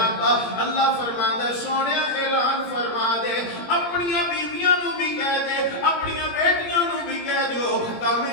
اللہ فرماندا ہے سونیا اعلان فرما دے, اپنی بیویاں نو بھی کہہ دے, اپنی بیٹیاں نو بھی کہہ دیو,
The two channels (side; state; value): right; late; 17 ms